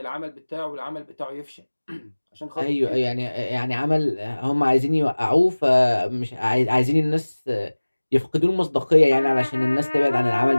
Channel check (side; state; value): both; inverted; correlation -1.00